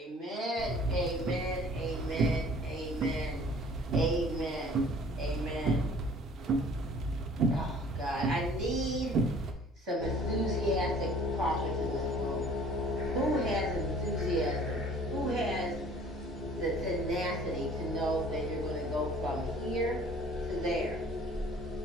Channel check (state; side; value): normal; both; correlation 0.51